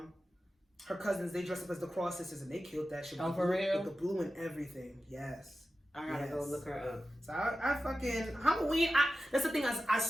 her cousins, they dressed up as the cross sisters and they killed that shit. Oh, for real? With the blue and everything. Yes. I gotta go look her up. So I fucking Halloween. That's the thing. I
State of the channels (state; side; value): normal; both; correlation 0.93